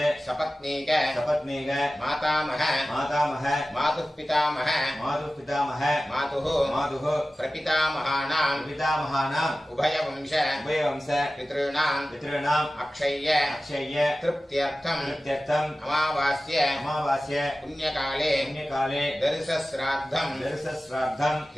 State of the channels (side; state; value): both; normal; correlation 0.96